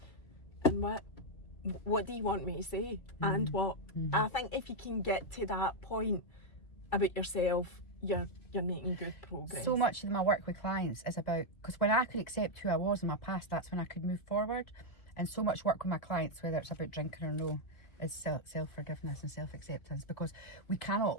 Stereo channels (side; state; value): right; late; 2.3 ms